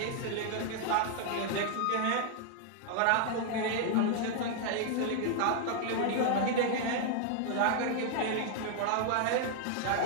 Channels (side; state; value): both; different; correlation -0.01